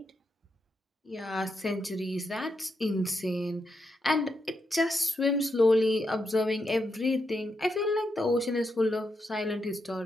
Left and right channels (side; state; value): both; normal; correlation 0.83